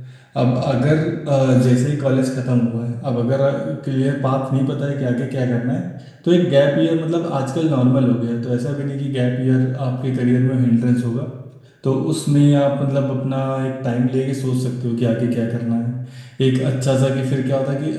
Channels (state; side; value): identical; both; correlation 1.00